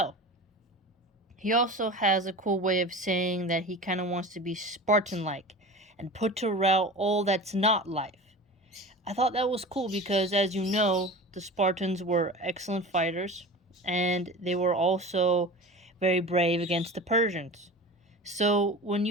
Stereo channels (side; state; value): both; normal; correlation 0.34